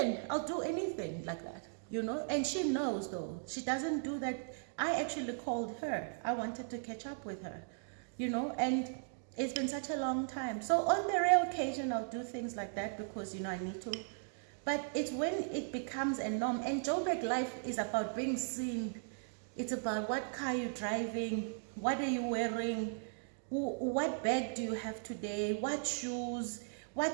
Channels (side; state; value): left; silent; digital silence